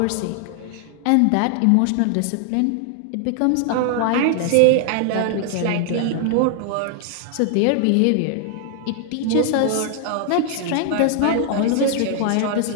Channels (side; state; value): both; different; correlation 0.00